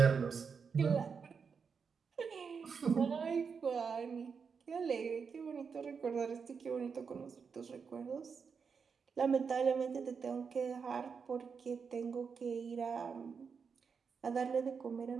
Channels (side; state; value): left; quieter; 5.9 dB